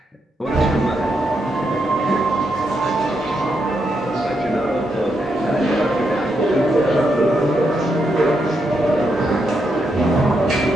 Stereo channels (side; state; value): both; normal; correlation 0.81